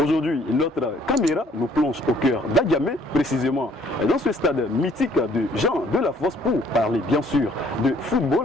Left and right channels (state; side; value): normal; both; correlation 0.61